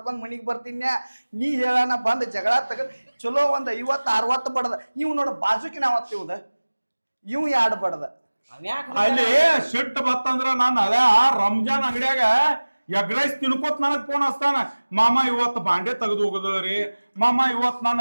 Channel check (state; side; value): inverted; both; correlation -1.00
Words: ಮನಿಗೆ ಬರ್ತೀನಿ. ನೀ ಹೇಳಣ ಬಂದು ಜಗಳ ತಗೊಂಡು ಚಲೋ ಒಂದು 50-60 ಬಡ್ದ. ಇವ್ ನೋಡ ಬಾಜುಕಿನ ಅವತ್ತು ಇವ್ದ ಇವ್ 2 ಬಡ್ದ. ಅಲ್ಲಿ ಸಿಟ್ಟು ಬತ್ತಂದ್ರ ನಾನು ಅದ ರಂಜಾನ್ ಅಂಗಡಿಯಾಗ ಎಗ್ ರೈಸ್ ತಿನ್ಕೋತ್ ನನಗ್ ಫೋನ್ ಹಚ್ತಾನ. ಮಾಮ ಇವತ್ತು ಬಾಂಡೆ ತೆಗೆದು ಹೋಗದ್ರಿ, ಮಾಮ ಇವತ್ತು ನಾನು